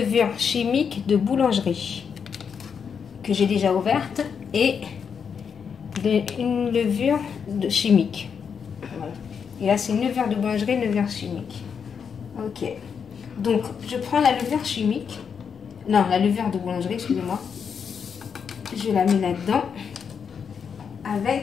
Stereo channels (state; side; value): quieter; right; 6.7 dB